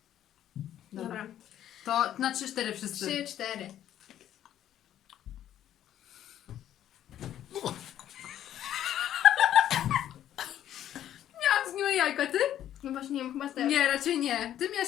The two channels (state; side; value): quieter; right; 11.4 dB